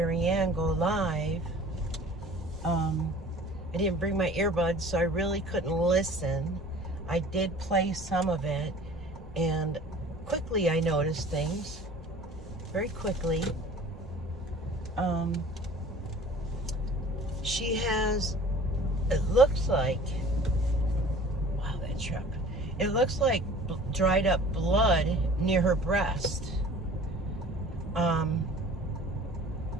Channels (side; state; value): both; normal; correlation 0.46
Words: Ann go live, I didn't bring my earbuds, so I really couldn't listen. I did play some of it, and quickly I noticed things. Very quickly. She has, it looks like, wow, that truck. It looks like dried up blood near her breast.